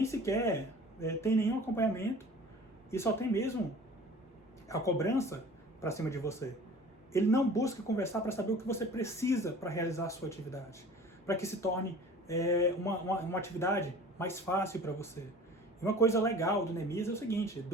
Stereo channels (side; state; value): both; normal; correlation 0.44